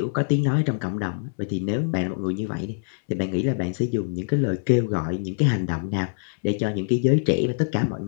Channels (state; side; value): silent; right; 62 dB below the other